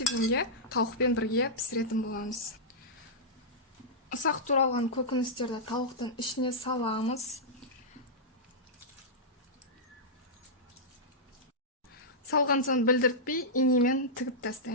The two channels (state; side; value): normal; both; correlation -0.11